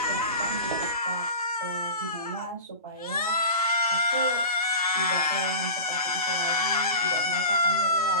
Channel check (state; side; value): inverted; both; correlation -0.33